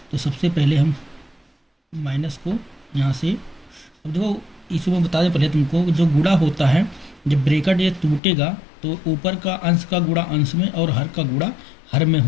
तो सबसे पहले हम माइनस को यहाँ से, अब देखो इसको मैं बता दें पहले तुमको, जो गुणा होता है जब ब्रैकेट ये टूटेगा तो ऊपर का अंश का गुणा अंश में और हर का गुणा हर में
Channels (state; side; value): drops out; right; at 8.2 s